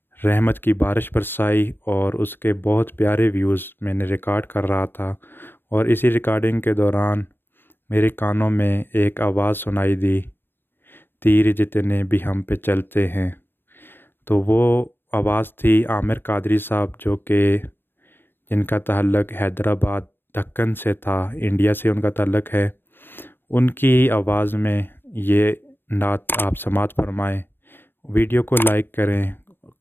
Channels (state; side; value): late; right; 0.10 ms